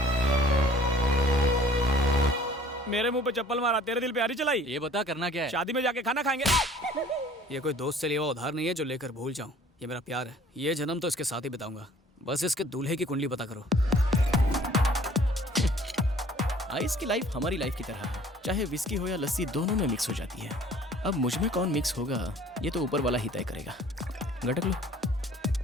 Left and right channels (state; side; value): normal; both; correlation 0.53